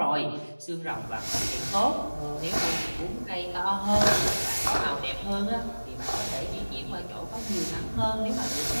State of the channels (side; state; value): both; inverted; correlation -1.00